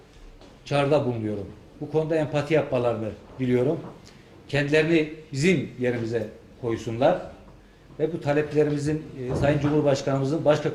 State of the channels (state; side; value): identical; both; correlation 1.00